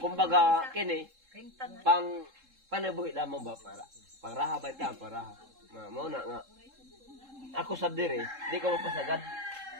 kumbaga kini pang panabuhi lamang ba para raha ba ta para mo na nga. Ako sab dire, di ko mapasagad.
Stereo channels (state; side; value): late; left; 3.7 ms